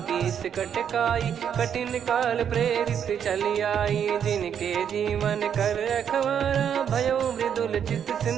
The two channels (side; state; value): left; quieter; 8.4 dB